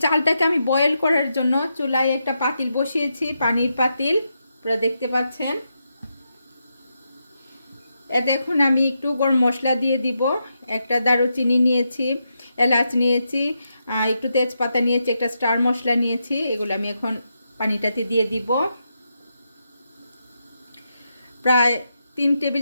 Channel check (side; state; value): both; inverted; correlation -0.84